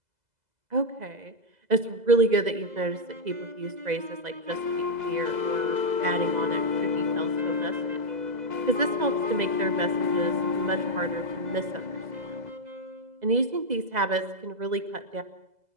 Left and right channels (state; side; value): late; left; 2.0 ms